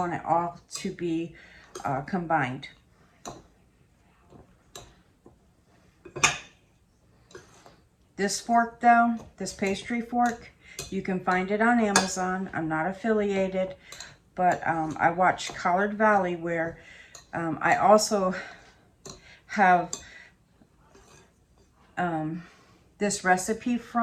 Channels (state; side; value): identical; both; correlation 1.00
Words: it all to be combined. This fork though, this pastry fork, you can find it on Amazon. I'm not affiliated, but I watch Collard Valley where I also have this recipe